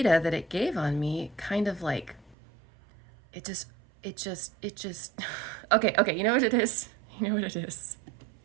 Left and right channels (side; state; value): left; drops out; at 2.4 s